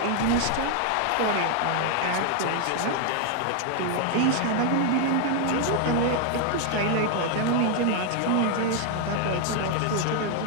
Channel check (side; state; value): both; different; correlation 0.00